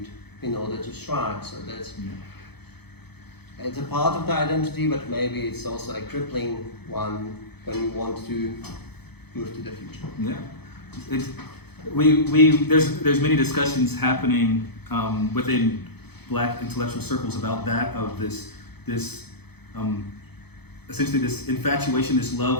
in order to strive. So that's it's a part of the identity, but maybe it's also a crippling one when you want to move to the future. Yeah. There's many discussions happening within Black intellectual circles about that, of this essentially this infatuation, this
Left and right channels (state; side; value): late; right; 0.98 ms